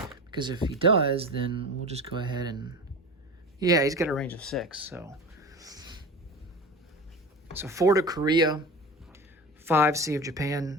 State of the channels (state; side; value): normal; both; correlation 0.31